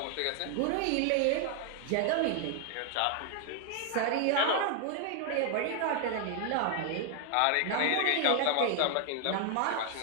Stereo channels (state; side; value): different; both; correlation 0.00